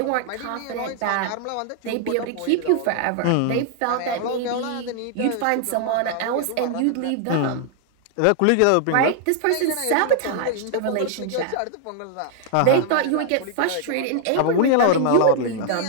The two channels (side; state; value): both; different; correlation 0.00